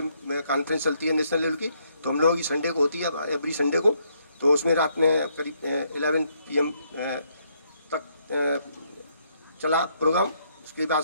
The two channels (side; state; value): both; inverted; correlation -0.73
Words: कॉन्फ्रेंस चलती है नेशनल लेवल की, तो हम लोगों की संडे को होती है, एवरी संडे को। तो उसमें रात में करीब 11 PM तक चला प्रोग्राम। उसके बाद